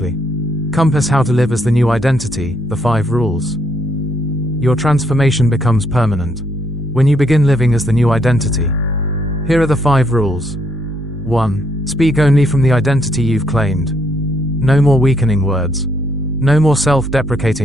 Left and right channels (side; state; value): both; normal; correlation 0.73